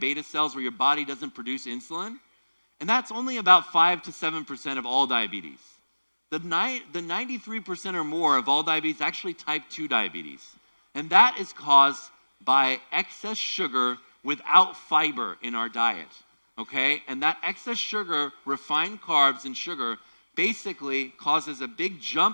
beta cells where your body doesn't produce insulin. And that's only about 5 to 7% of all diabetes. The 93% or more of all diabetes is actually type 2 diabetes. And that is caused by excess sugar without fiber in our diet, okay? And that excess sugar, refined carbs and sugar, basically causes a big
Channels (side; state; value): both; inverted; correlation -1.00